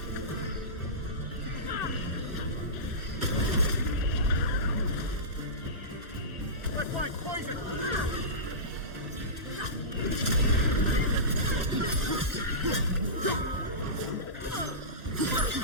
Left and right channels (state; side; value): late; left; 2.0 ms